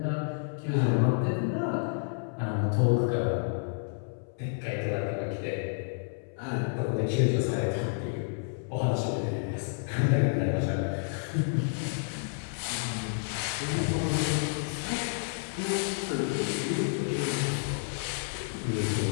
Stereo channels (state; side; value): silent; right; 58 dB below the other